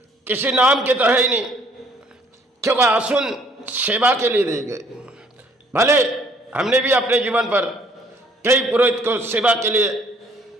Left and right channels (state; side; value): normal; both; correlation 0.61